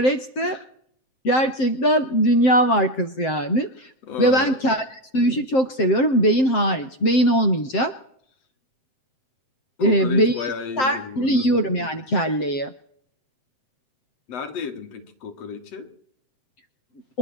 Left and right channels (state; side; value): late; right; 7.7 ms